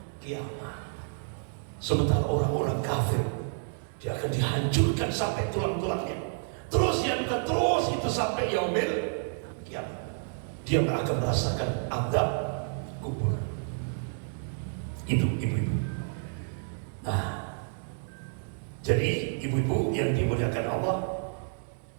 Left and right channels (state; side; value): silent; left; 58 dB below the other